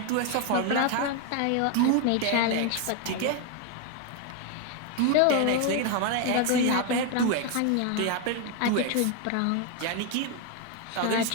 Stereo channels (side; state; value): both; different; correlation 0.01